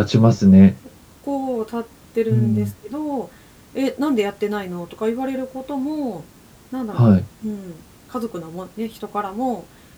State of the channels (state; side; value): identical; both; correlation 1.00